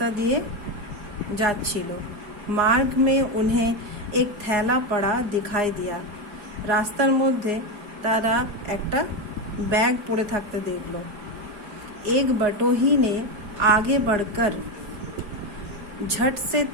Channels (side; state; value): left; late; 4.8 ms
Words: দিয়ে যাচ্ছিল। मार्ग में उन्हें एक थैला पड़ा दिखाई दिया। রাস্তার মধ্যে তারা একটা ব্যাগ পড়ে থাকতে দেখলো। एक बटोही ने आगे बढ़कर झट से